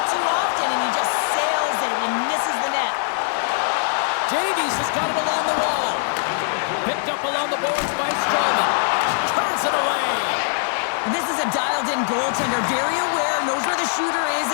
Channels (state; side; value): silent; right; 63 dB below the other